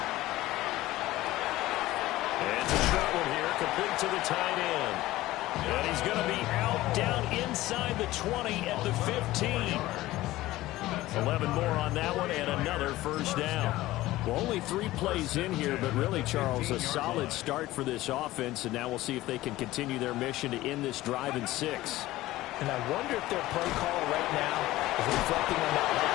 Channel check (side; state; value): right; quieter; 16.9 dB